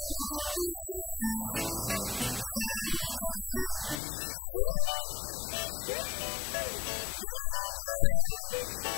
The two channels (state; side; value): drops out; right; at 4.0 s